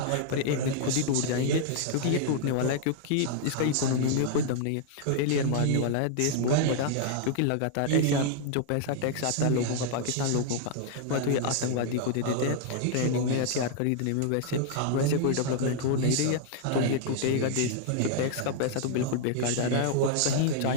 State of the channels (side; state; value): both; different; correlation -0.01